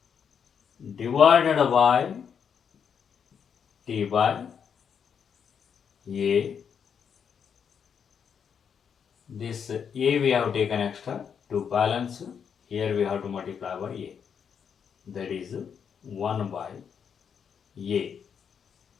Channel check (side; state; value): right; quieter; 7.2 dB